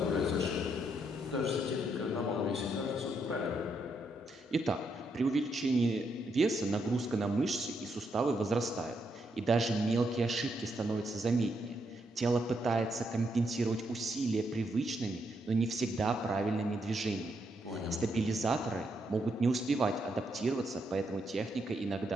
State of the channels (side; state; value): both; normal; correlation 0.78